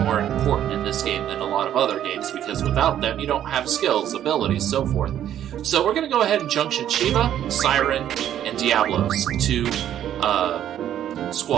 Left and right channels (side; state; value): left; quieter; 10.9 dB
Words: important in this game than a lot of other games, because without them you don't have skills, abilities, so forth. So we're going to go ahead and junction Shiva, Siren, and Diablos to